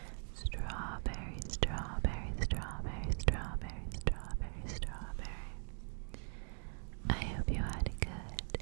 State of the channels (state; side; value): silent; left; 50 dB below the other